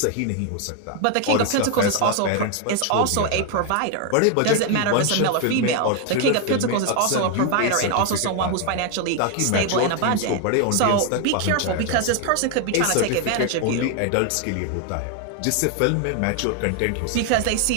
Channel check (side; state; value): both; different; correlation 0.01